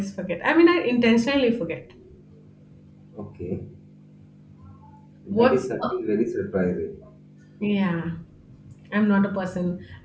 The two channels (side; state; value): both; identical; correlation 1.00